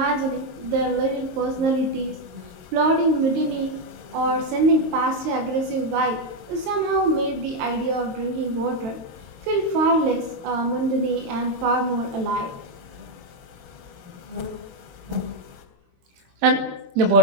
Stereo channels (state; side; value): late; left; 22 ms